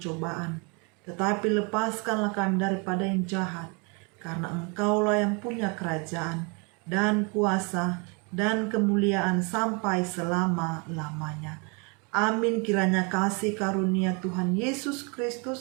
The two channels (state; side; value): quieter; left; 32.4 dB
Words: tetapi lepaskanlah kami daripada yang jahat, karena Engkaulah yang punya kerajaan dan kuasa dan kemuliaan sampai selama-lamanya. Amin. Kiranya kasih karunia Tuhan Yesus